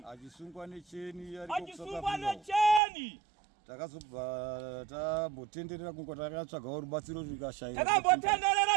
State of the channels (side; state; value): left; drops out; at 2.8 s